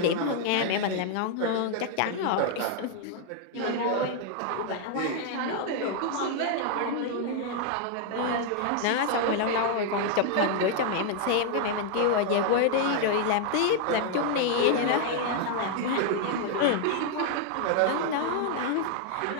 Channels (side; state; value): both; different; correlation 0.00